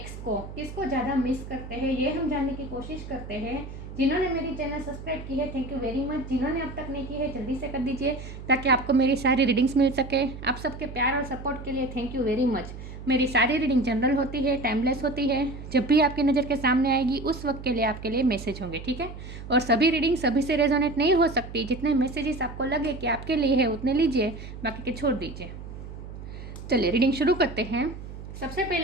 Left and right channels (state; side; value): noise; right; hum, 11 dB below the sound